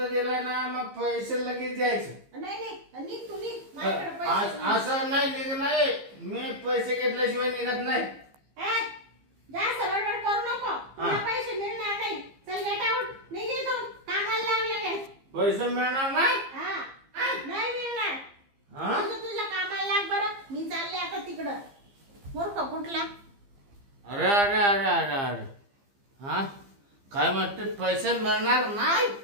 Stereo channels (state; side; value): late; left; 15 ms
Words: दिला ना मग पैसे लगेच द्यायचे. नाही नाही निघ तू निघ माझ्याकडे पैसे नाही. असं नाही निघ नाही मी पैसे घेतल्याशिवाय निघत नाही. ए, जास्त बडबड करू नको तुला पैसे मिळणार नाही चल गेट आउट निघ इथून कामाला लाग लगेच पैसे मिळणार नाही. हा नाही मिळणार हा? तुझ्या कामाला लाग बरं मी चालले आता तिकडं मूर्ख कुठला अरे अरे अरे अरे अरे हा काय म्हणते पैसे मिळणार नाही.